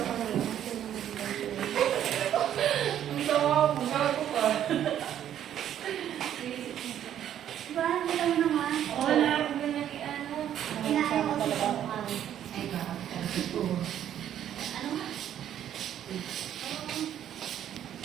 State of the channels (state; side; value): quieter; left; 10.6 dB